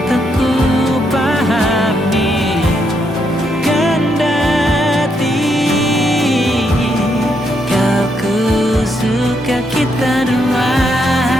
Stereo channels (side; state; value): both; normal; correlation 0.77